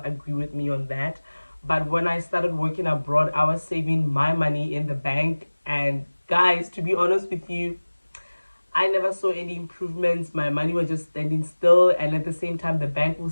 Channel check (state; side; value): inverted; both; correlation -1.00